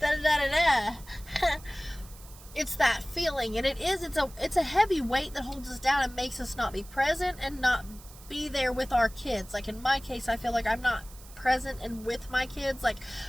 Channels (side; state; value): right; noise; hiss, 20 dB below the sound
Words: It's that feeling, and it's a heavy weight that holds us down and makes us not be present and not be there with our kids. Like in my case, I feel like I'm not present and with my kids. Like,